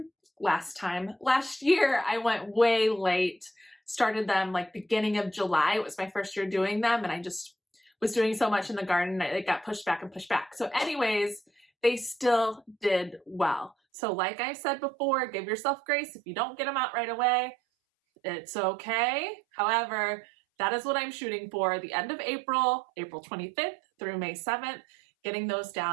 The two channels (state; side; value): drops out; left; at 13.8 s